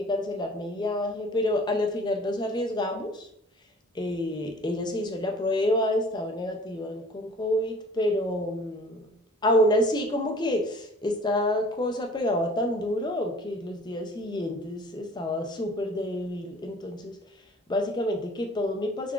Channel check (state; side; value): normal; both; correlation 0.48